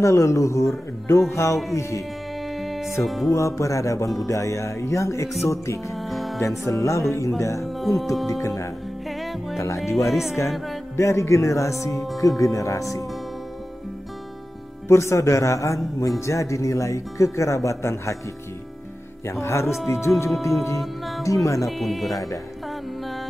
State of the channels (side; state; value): both; normal; correlation 0.94